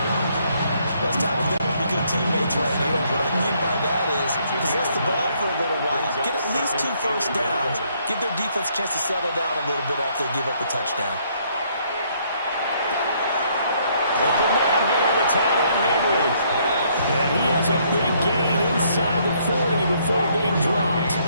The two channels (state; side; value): inverted; both; correlation -0.68